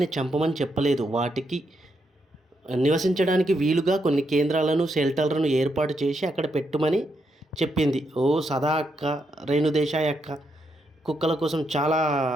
చంపమని చెప్పలేదు. వాటికి నివసించడానికి వీలుగా కొన్ని కేంద్రాలను, షెల్టర్లను ఏర్పాటు చేసి అక్కడ పెట్టుమని చెప్పింది. ఓ సదా అక్క, రేణుదేశాయ్ అక్క కుక్కల కోసం చాలా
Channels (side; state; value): both; normal; correlation 0.80